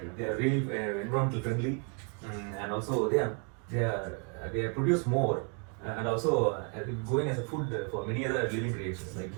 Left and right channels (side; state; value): left; quieter; 35.5 dB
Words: They are really environmental friendly, and also they produce more, and also going as a food for many other living creatures like